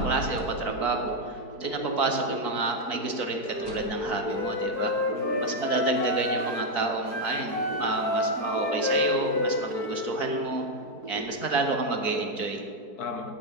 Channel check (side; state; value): right; late; 4.6 ms